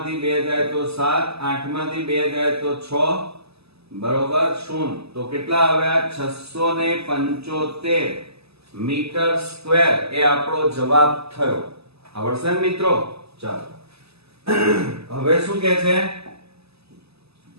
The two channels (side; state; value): left; late; 0.79 ms